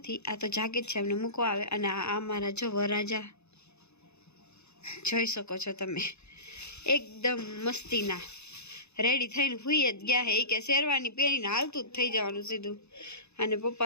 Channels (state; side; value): late; right; 0.81 ms